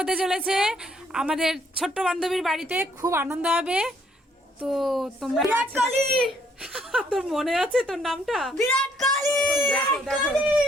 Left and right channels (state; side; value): normal; both; correlation 0.67